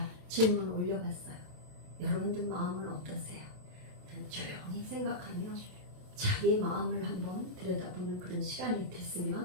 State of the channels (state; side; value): late; left; 27 ms